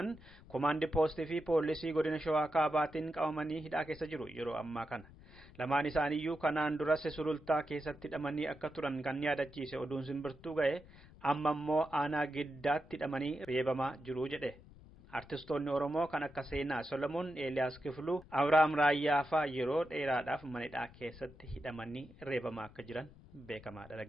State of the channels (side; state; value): left; noise; rumble, 22 dB below the sound